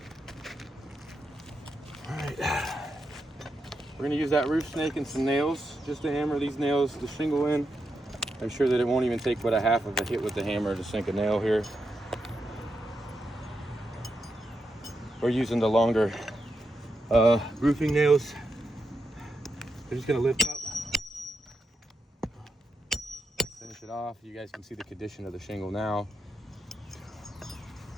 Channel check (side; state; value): both; normal; correlation 0.85